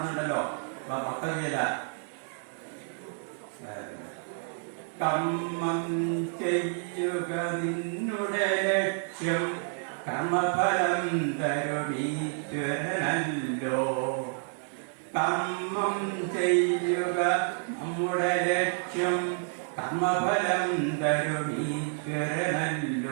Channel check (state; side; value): silent; left; 58 dB below the other